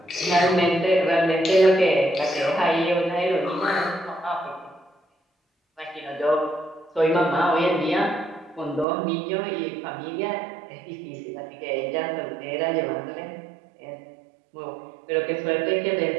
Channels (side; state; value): left; drops out; at 8.8 s